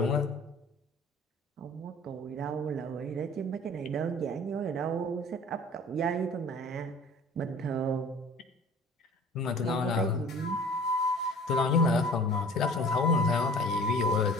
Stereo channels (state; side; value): normal; both; correlation 0.46